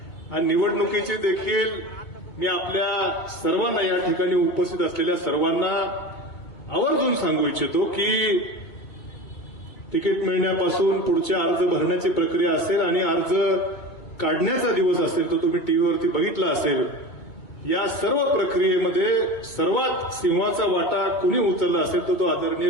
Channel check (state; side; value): late; right; 2.2 ms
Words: आणि निवडणुकीची देखील मी आपल्या सर्वांना, या ठिकाणी उपस्थित असलेल्या सर्वांना आवर्जून सांगू इच्छितो की तिकीट मिळण्यापासून पुढच्या अर्ज भरण्याची प्रक्रिया असेल आणि अर्ज काढण्याचा दिवस असेल, तो तुम्ही टीव्हीवरती बघितला असेल. या सर्व प्रक्रियेमध्ये सर्वात सिंहाचा वाटा कुणी उचलला असेल तर तो आदरणीय